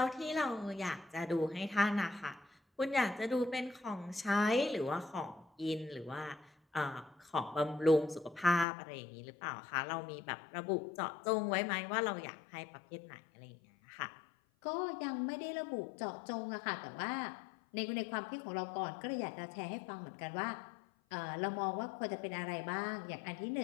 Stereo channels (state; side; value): drops out; right; at 8.7 s